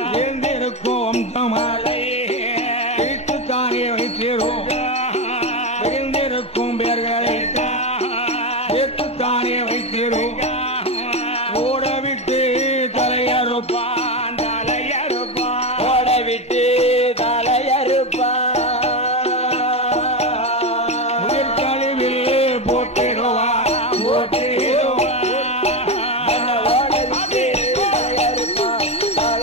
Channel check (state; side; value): normal; both; correlation 0.15